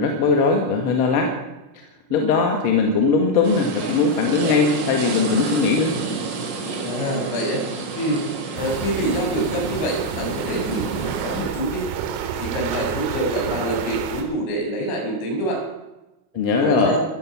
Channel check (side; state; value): left; late; 5.6 ms